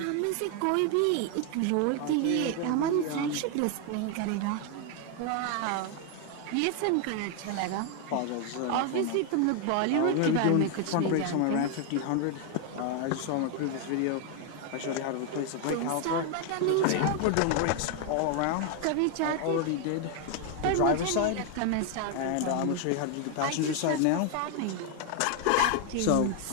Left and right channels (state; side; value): different; both; correlation 0.01